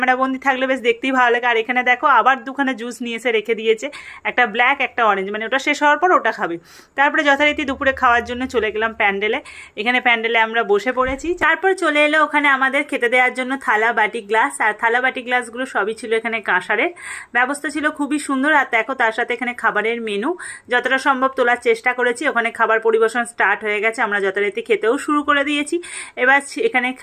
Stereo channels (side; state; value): both; identical; correlation 1.00